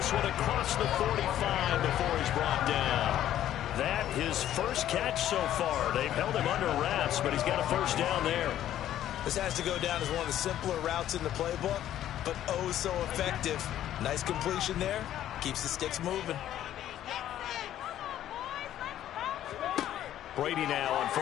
one across the 45 before he's brought down. That his first catch so far. They've held him under wraps, but he's got a first down there. This has to go down as one of the simpler routes in the playbook, but oh so effective. Nice completion there. Keeps the sticks moving. Brady now on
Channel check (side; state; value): right; quieter; 11.9 dB